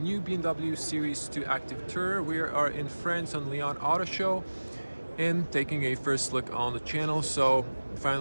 BMW Series 2 Active Tourer. We are in France on Lyon Auto Show and taking a first look on the channel. So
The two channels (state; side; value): inverted; both; correlation -1.00